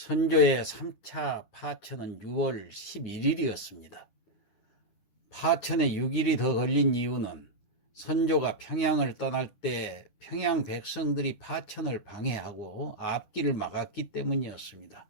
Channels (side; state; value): right; late; 9.8 ms